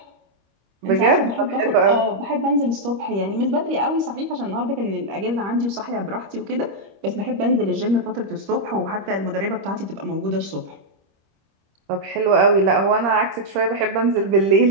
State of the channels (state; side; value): late; left; 25 ms